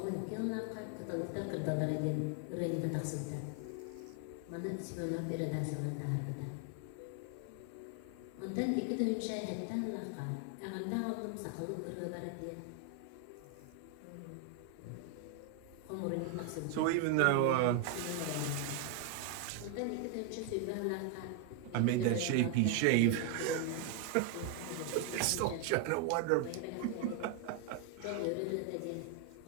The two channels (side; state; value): both; different; correlation 0.01